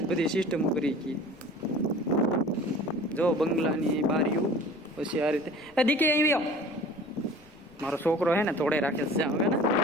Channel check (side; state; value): left; noise; rumble, 27 dB below the sound